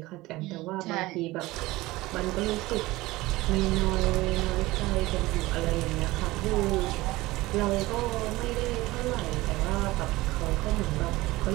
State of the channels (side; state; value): left; quieter; 19.4 dB